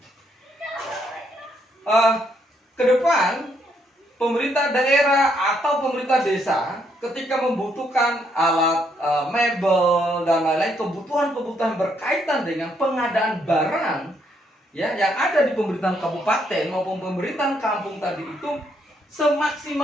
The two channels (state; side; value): normal; both; correlation 0.73